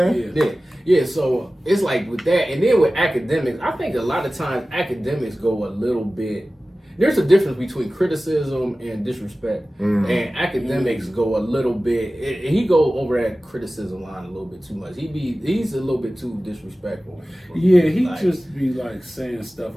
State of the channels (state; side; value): normal; both; correlation 0.96